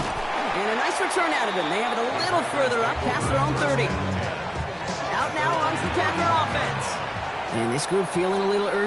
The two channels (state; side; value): identical; both; correlation 1.00